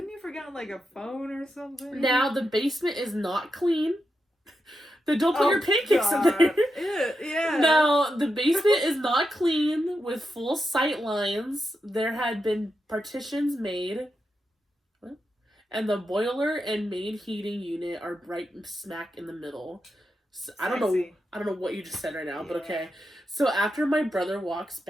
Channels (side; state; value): both; normal; correlation 0.86